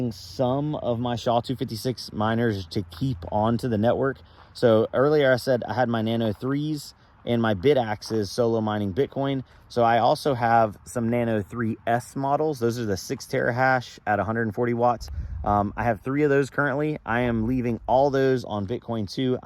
some of my SHA-256 miners to keep onto the network. So earlier I said I had my Nano 3s and my BitAxes solo mining Bitcoin. So I also have some Nano 3S models. Those are the 6 terahash at 140 watts. I have 3 of those currently. I am leaving all those on Bitcoin 2.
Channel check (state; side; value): identical; both; correlation 1.00